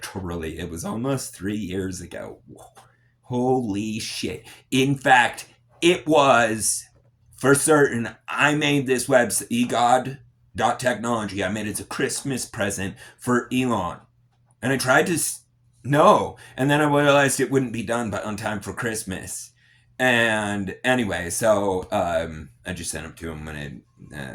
it was almost 3 years ago. Holy shit. In fact, it was for certain. I made this website, egod.technology. I made it as a Christmas present for Elon. And I tried to no. And then I realized it wouldn't be done on time for Christmas. And anyway, so I just sent them to him when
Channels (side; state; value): both; identical; correlation 1.00